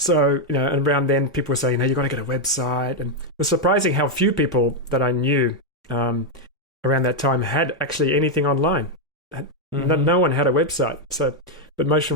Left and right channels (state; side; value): normal; both; correlation 0.01